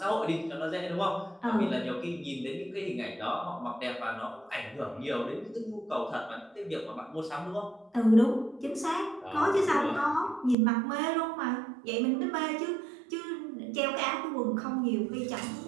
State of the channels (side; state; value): left; drops out; at 10.6 s